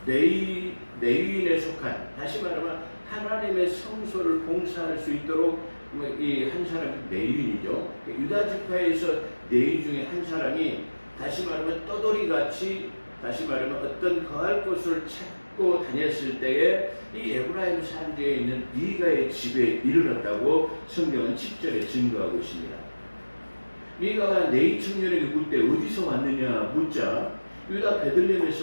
레위인에 속한, 다시 말하면 하나님의 성소를 봉사할 수 있도록 이 한 사람이 레위인이죠. 유다 지파에서 레위 중에 한 사람이 다시 말하면 떠돌이같이, 다시 말하면 어떤 거할 곳을 찾고 다녔을 때에 이 에브라임 산지에 있는 미가의 집에 이르렀다고 성경은 10절에 증거하고 있습니다. 미가가 레위 청년에게 묻을 때 어디서 왔느냐 묻자 유다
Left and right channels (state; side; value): inverted; both; correlation -1.00